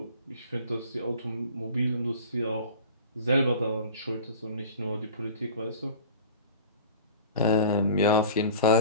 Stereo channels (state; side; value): inverted; both; correlation -0.40